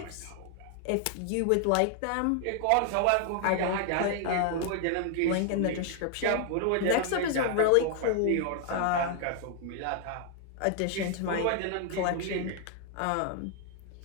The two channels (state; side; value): different; both; correlation 0.00